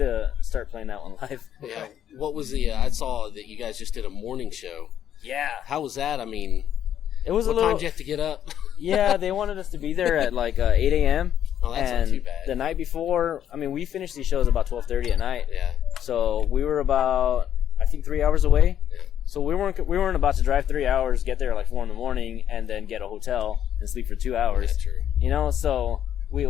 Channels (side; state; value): right; quieter; 10.1 dB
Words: start playing that one live. Yeah. What was I saw that you guys just did a morning show. Yeah. How was that? I mean, it was what time did you have to get up? Yeah, they wanted us to be there at like 8 a.m. Oh, that's and not too bad. The night before, I mean, we finished these shows about 12:30 at night. Yeah. So we were about, I think, 3 hours away. Yeah. So we weren't about to drive 3 hours, get there at like 4 in the morning, and then get a hotel and sleep for 2 hours. That's true. So